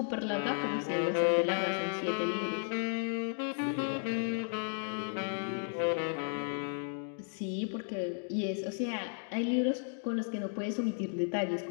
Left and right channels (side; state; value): right; silent; 55 dB below the other